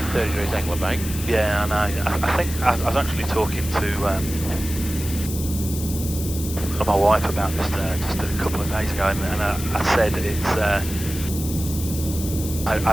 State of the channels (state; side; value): noise; left; hiss, 9 dB below the sound